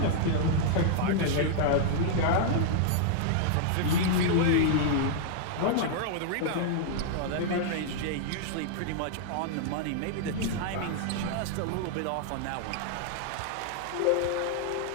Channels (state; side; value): different; both; correlation -0.01